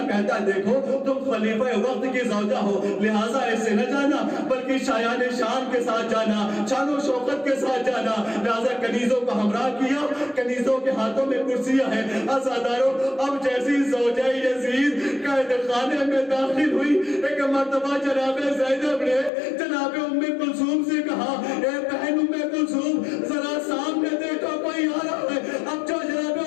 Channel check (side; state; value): right; drops out; at 19.3 s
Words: کہتا ہے دیکھو تم خلیفہ وقت کی زوجہ ہو لہٰذا ایسے نہ جانا بلکہ شایان شان کے ساتھ جانا، شان و شوکت کے ساتھ جانا۔ لہٰذا کنیزوں کو ہمراہ کیا، کنیزوں کے ہاتھوں میں کرسیاں ہیں۔ عزاداروں اب جیسی زوجہ یزید قید خانے میں داخل ہوئی، ایک مرتبہ جناب زینب نے جناب ام کلثوم سے کہا اے بہن ام کلثوم ذرا سامنے دیکھو کوئی آ رہا ہے۔ اب جو جناب